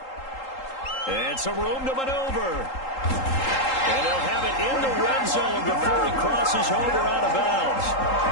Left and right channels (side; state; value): right; late; 3.8 ms